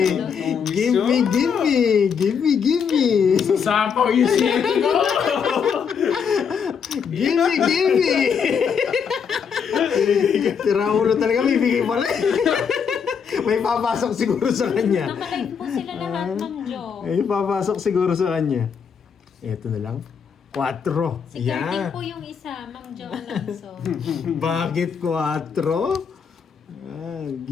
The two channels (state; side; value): quieter; right; 6.7 dB